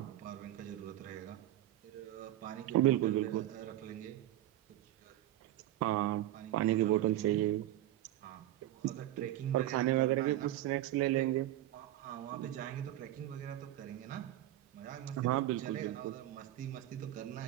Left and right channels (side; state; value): left; quieter; 14.0 dB